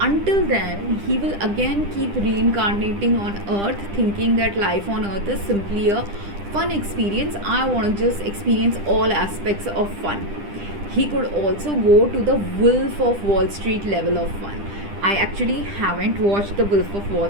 then he will again keep reincarnating on earth, thinking that life on earth is simply a fun experience. I want to just experience all aspects of fun. He could also go to the Wolf of Wall Street level of fun. I actually haven't watched the Wolf of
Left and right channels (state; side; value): late; left; 10 ms